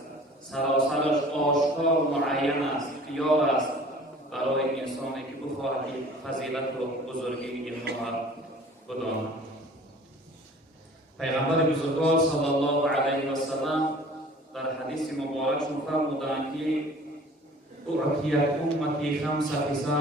سراسرش آشکار و معین است، اختیار است برای انسانی که بخواهد فضیلت و بزرگی این ماه بداند. پیغمبر بزرگوار صلی الله علیه و سلم در حدیث مبارکشون فرمودند که اعطیت امتی خمس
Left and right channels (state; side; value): normal; both; correlation 0.47